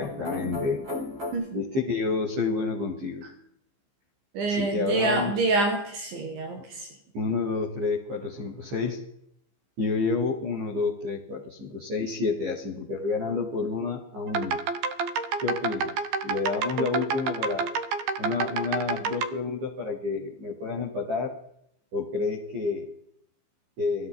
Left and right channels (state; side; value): late; left; 15 ms